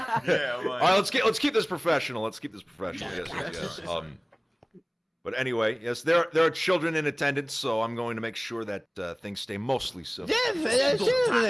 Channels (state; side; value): identical; both; correlation 1.00